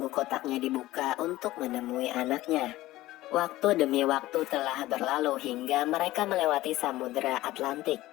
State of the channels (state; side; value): quieter; right; 16.8 dB